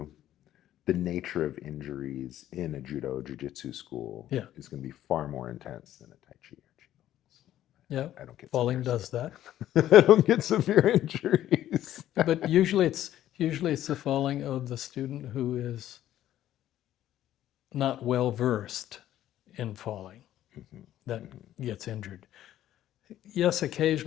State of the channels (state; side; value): quieter; right; 12.5 dB